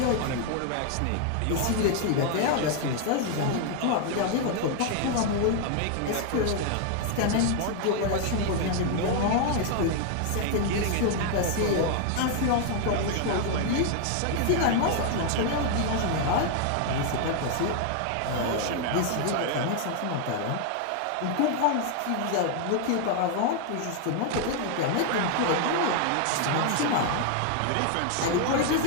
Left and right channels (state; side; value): different; both; correlation 0.00